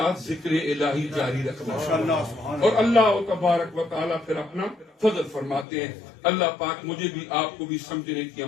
ذکر الہی جاری رکھنا، اور اللہ تبارک و تعالیٰ پھر اپنا فضل فرماتے ہیں. اللہ پاک مجھے بھی آپ کو بھی سمجھنے کی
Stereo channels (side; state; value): right; drops out; at 5.7 s